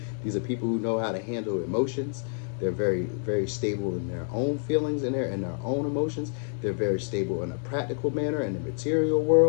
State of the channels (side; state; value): right; silent; 59 dB below the other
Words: These are people who know how to handle emotions. They're very, very stable in their own feelings and their own emotions. They're very stable in a practical manner in the material